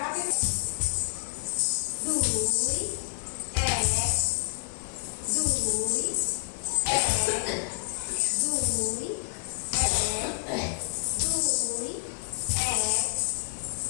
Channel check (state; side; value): silent; right; digital silence